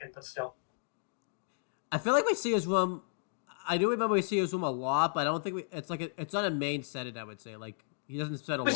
but still. I feel like we see his room. I do remember we see his room a lot, but I don't think it's not a main setting, I would say. Like, he doesn't spend a lot of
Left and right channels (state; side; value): silent; right; digital silence